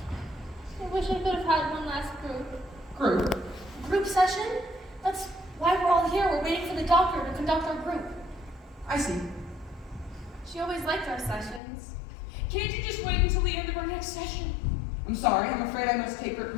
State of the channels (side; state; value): right; drops out; at 11.6 s